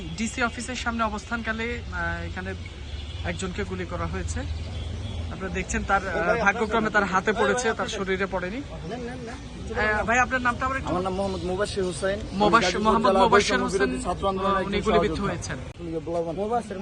ডিসি অফিসের সামনে অবস্থানকালে এখানে একজনকে গুলি করা হয়েছে। আপনারা দেখছেন তার ভাগ্যক্রমে তার হাতে পড়েছে, তার শরীরে পড়েনি। ভাই, আপনার নামটা? আমার নাম মোহাম্মদ মুবাশির হুসাইন। মোহাম্মদ মুবাশির হোসেন, ছাত্র আন্দোলনের উনি গুলিবিদ্ধ হয়েছেন।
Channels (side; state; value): both; identical; correlation 1.00